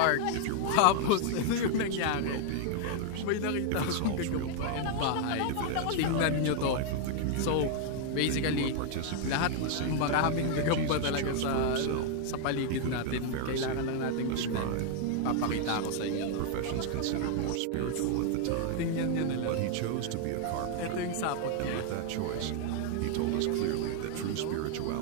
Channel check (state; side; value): different; both; correlation 0.00